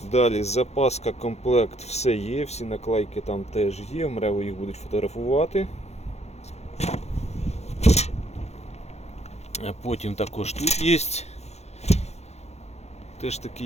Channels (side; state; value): right; late; 0.31 ms